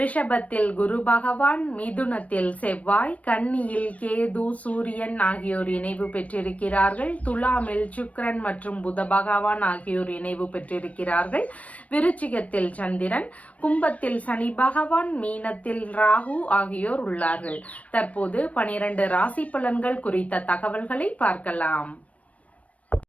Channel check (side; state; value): right; late; 0.067 ms